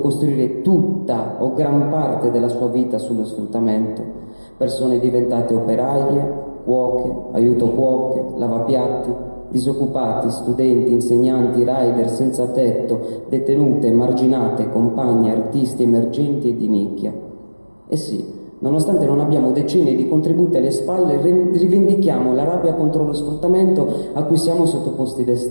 tutta o gran parte della sua vita sullo sfruttamento. Persone diventate operaie, cuoche, aiuto cuoche, lavapiatti, disoccupati, studenti, insegnanti, rider senza tetto, detenute, emarginate, compagne, artisti emergenti e di nicchia. E sì, Nonostante non abbiamo decenni di contributi alle spalle, rivendichiamo la rabbia contro lo sfruttamento a cui siamo sottoposti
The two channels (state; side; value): inverted; both; correlation -1.00